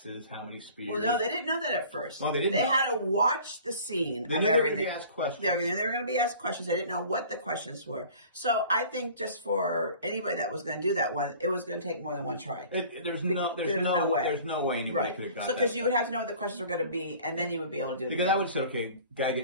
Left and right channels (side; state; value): both; inverted; correlation -0.47